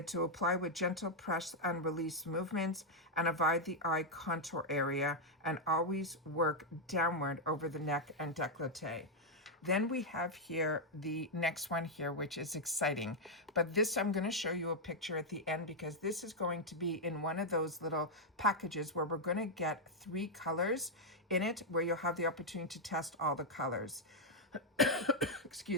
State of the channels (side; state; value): both; normal; correlation -0.01